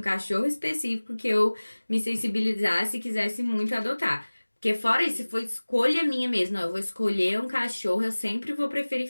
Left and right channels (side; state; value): both; inverted; correlation -1.00